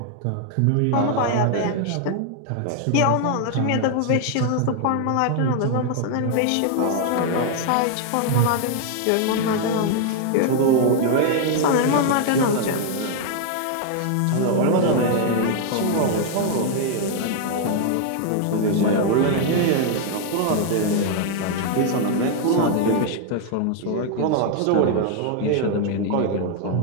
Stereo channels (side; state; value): both; different; correlation 0.00